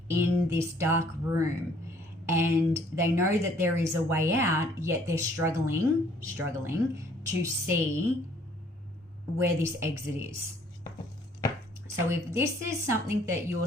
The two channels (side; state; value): both; normal; correlation 0.60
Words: in this dark room, and they know that there is a way out, yet they're struggling to see where this exit is. So if this is something that you're